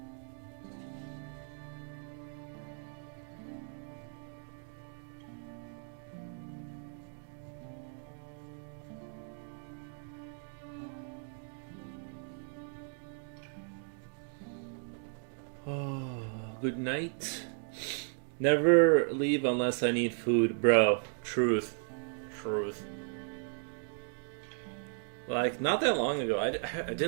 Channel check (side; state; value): left; silent; 54 dB below the other